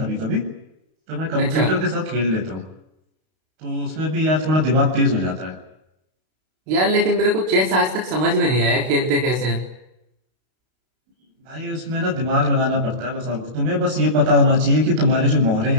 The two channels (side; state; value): left; late; 32 ms